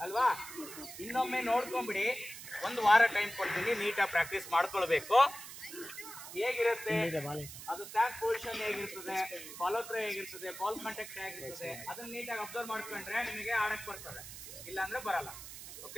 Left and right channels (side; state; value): right; noise; hiss, 12 dB below the sound